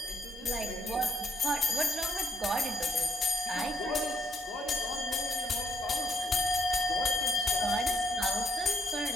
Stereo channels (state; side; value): normal; both; correlation 0.71